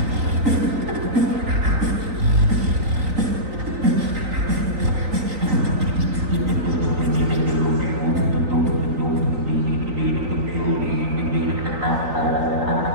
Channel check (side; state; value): left; late; 3.9 ms